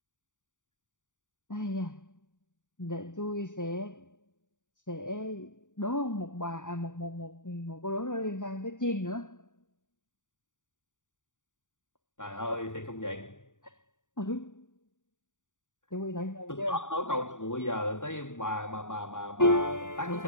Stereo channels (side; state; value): right; late; 0.86 ms